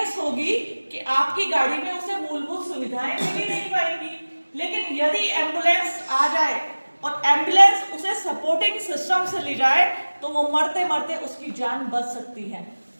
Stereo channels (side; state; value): both; inverted; correlation -1.00